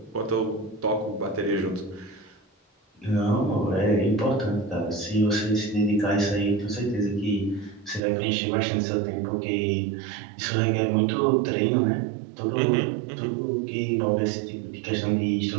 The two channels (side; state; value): left; drops out; at 8.0 s